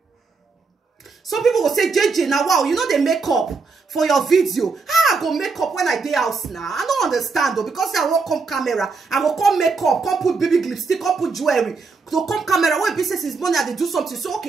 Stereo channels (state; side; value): quieter; left; 4.5 dB